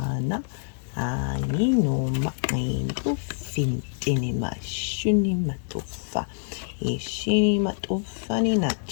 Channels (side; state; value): right; silent; digital silence